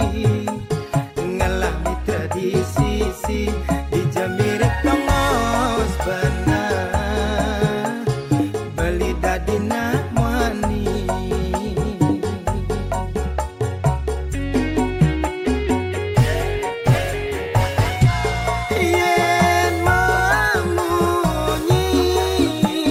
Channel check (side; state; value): both; identical; correlation 1.00